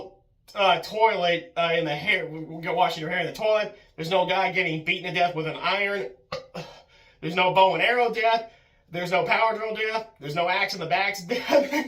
toilet in the hair. Washing your hair in the toilet. There's no guy getting beaten to death with an iron. There's no bow and arrow death. There's no power drill death. There's no axe in the back's death.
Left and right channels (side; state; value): both; identical; correlation 1.00